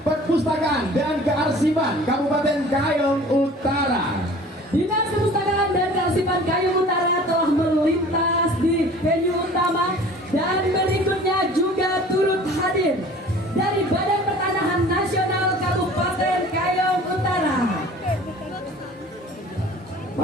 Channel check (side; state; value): both; normal; correlation 0.46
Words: dan Kearsipan Kabupaten Kayong Utara. Dinas Perpustakaan dan Kearsipan Kayong Utara telah melintas di venue utama. Dan berikutnya juga turut hadir dari Badan Pertanahan Nasional Kabupaten Kayong Utara.